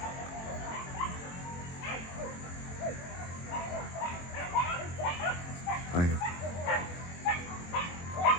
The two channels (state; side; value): late; right; 23 ms